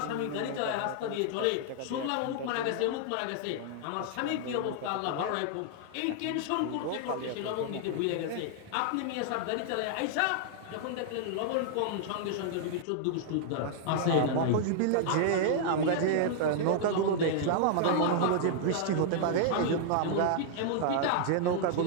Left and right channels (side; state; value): both; different; correlation -0.01